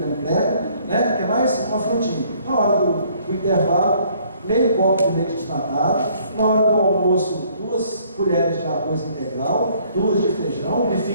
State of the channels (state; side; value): inverted; both; correlation -0.62